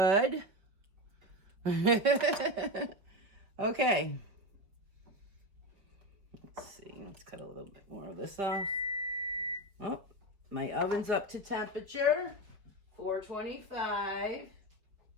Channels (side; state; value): left; late; 4.8 ms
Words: Okay. Let's see. Let's cut a little bit more of this off. Oh, my oven's up to temperature. 425.